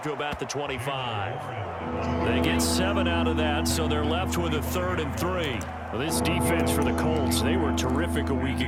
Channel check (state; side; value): identical; both; correlation 1.00